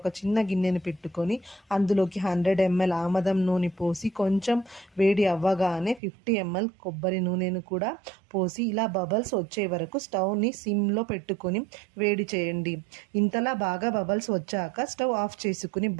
చిన్న గిన్నెను పెట్టుకొని అందులోకి 100 ml ఆమదం నూనె పోసి కొంచెం వేడి అవ్వగానే 50 ml కొబ్బరి నూనెను కూడా పోసి ఇలా బబల్స్ వచ్చే వరకు స్టవ్ని సిమ్లో పెట్టుకొని వేడి చేయండి. ఇంతలా బాగా బబల్స్ వచ్చాక స్టవ్ ఆఫ్ చేసుకుని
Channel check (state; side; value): drops out; left; at 6.0 s